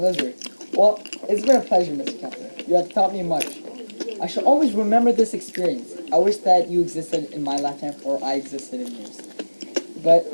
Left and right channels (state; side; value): inverted; both; correlation -1.00